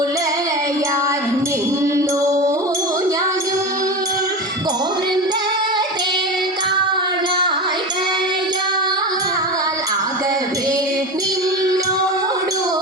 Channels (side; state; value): both; normal; correlation 0.25